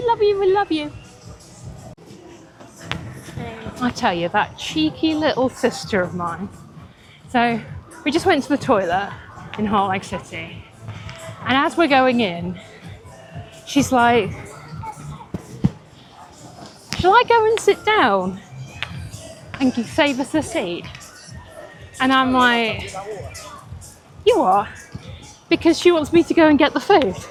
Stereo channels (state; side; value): identical; both; correlation 1.00